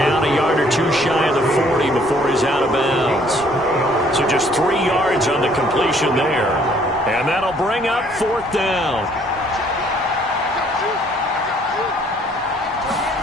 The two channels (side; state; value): both; normal; correlation 0.62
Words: a yard or 2 shy of the 40 before he's out of bounds. So just 3 yards on the completion there. And that'll bring up 4th down.